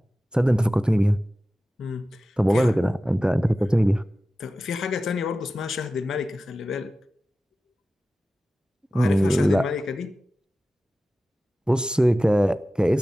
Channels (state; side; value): normal; both; correlation 0.95